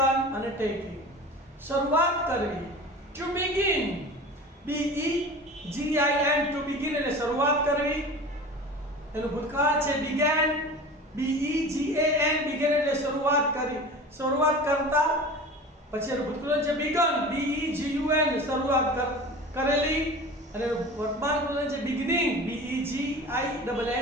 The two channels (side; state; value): both; normal; correlation 0.36